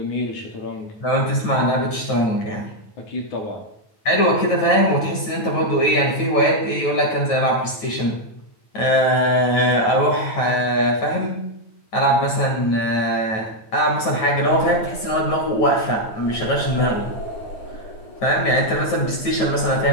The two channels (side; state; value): right; late; 9.2 ms